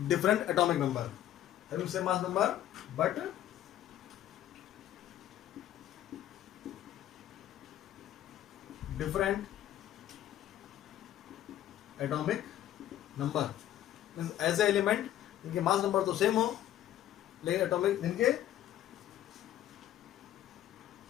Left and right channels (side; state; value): right; quieter; 12.3 dB